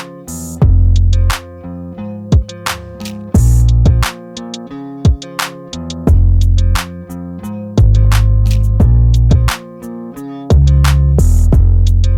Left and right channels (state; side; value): identical; both; correlation 1.00